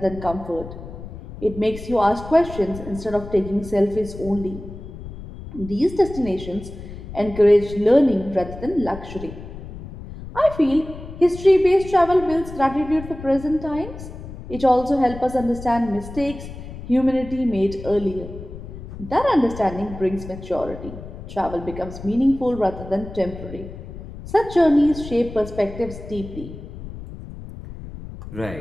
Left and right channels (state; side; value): noise; left; rumble, 12 dB below the sound